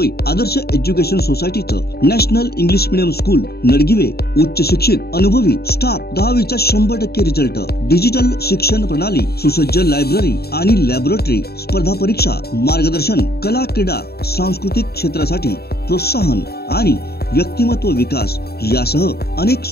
आदर्श एज्युकेशन सोसायटीचं national English medium school Nadgive उच्च शिक्षित अनुभवी स्टाफ 10वीचा 100% रिझल्ट, डिजिटल शिक्षण प्रणाली, सुसज्ज लायब्ररी आणि लॅबोरेटरी, स्पर्धा परीक्षा मार्गदर्शन, कला क्रीडा सांस्कृतिक क्षेत्रासाठी प्रोत्साहन आणि व्यक्तिमत्व विकास यासह अनेक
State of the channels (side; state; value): right; late; 0.46 ms